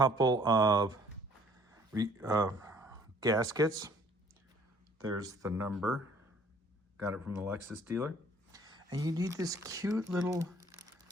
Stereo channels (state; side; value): normal; both; correlation 0.57